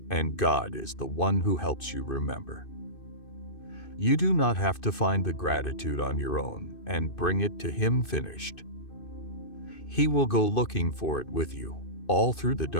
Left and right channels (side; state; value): right; late; 2.6 ms